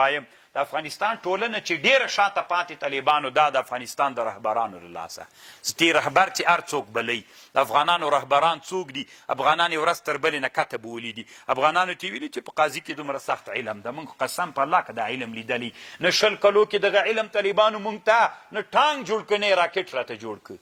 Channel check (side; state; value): both; identical; correlation 1.00